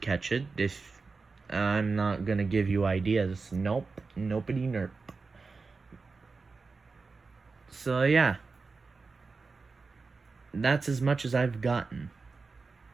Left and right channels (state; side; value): quieter; left; 4.3 dB